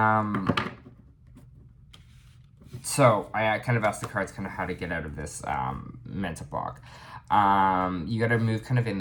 So I kind of asked the cards kind of how to get out of this mental block. You got to move kind of in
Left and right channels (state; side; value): identical; both; correlation 1.00